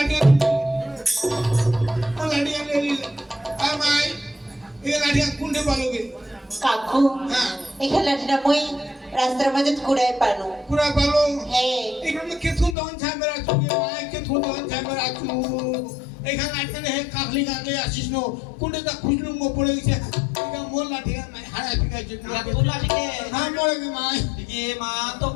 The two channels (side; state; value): right; drops out; at 12.8 s